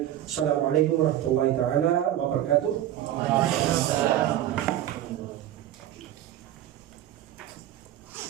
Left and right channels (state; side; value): quieter; left; 12.6 dB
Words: Assalamualaikum warahmatullahi taala wabarakatuh.